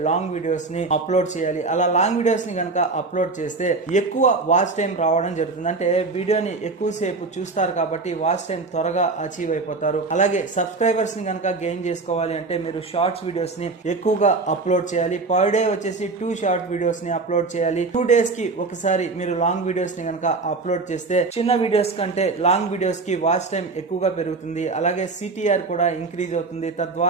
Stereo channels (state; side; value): quieter; left; 3.8 dB